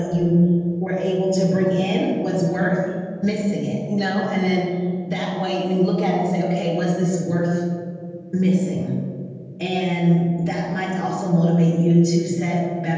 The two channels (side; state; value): both; identical; correlation 1.00